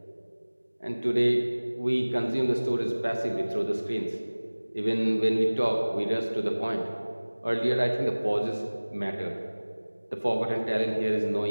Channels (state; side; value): inverted; both; correlation -1.00